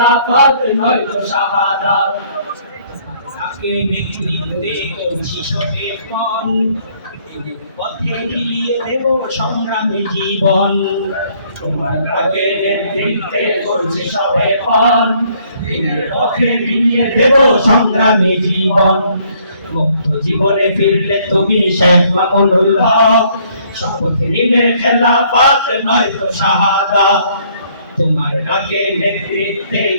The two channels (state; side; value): inverted; both; correlation -0.64